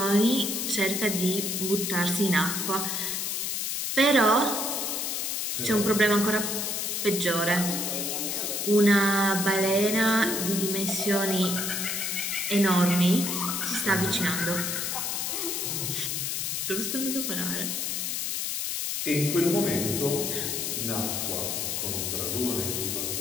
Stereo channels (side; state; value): left; noise; hiss, 1 dB below the sound